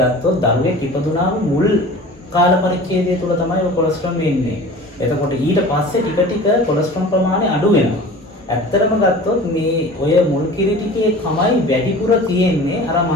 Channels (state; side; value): normal; both; correlation 0.40